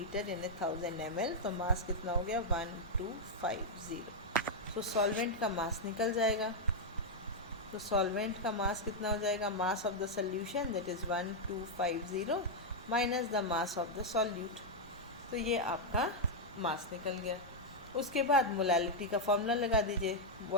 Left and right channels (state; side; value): normal; both; correlation -0.02